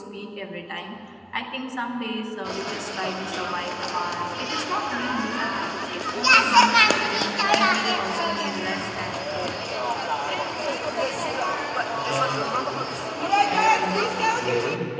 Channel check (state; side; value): identical; both; correlation 1.00